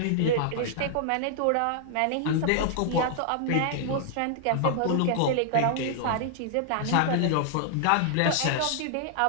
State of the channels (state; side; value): different; both; correlation -0.01